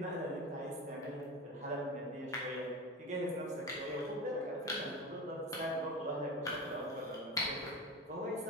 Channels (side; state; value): both; normal; correlation 0.25